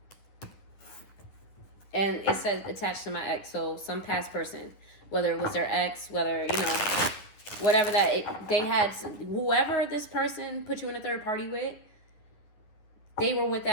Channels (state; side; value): late; right; 9.9 ms